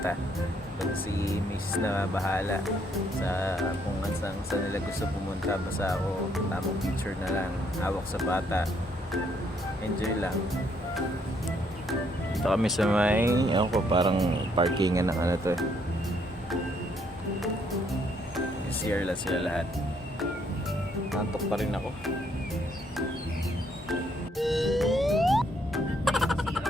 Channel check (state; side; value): normal; both; correlation 0.70